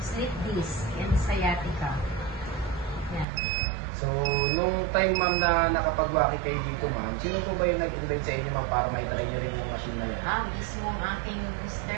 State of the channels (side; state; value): left; drops out; at 3.2 s